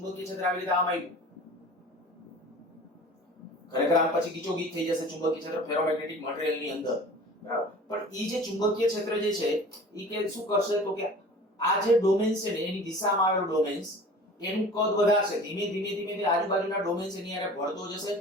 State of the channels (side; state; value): both; normal; correlation 0.42